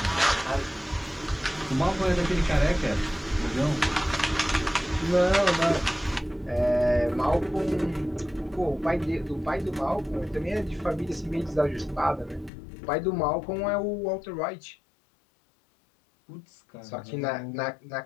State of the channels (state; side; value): drops out; right; at 12.5 s